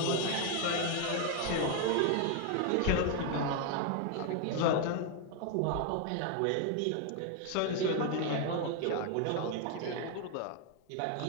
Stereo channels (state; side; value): different; both; correlation 0.01